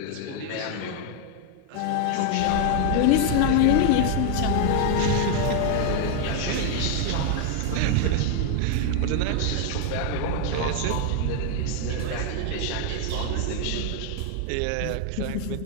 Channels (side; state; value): both; different; correlation 0.00